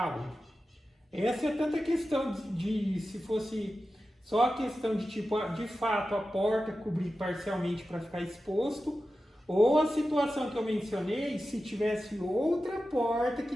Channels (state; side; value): normal; both; correlation 0.93